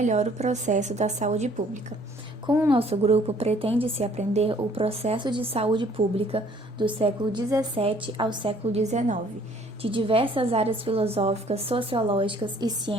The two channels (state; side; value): normal; both; correlation 0.59